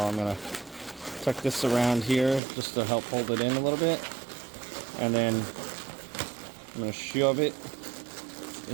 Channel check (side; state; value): left; drops out; at 2.4 s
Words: I'm going to tuck this around here just to help hold it in a little bit. And then I'm going to shove it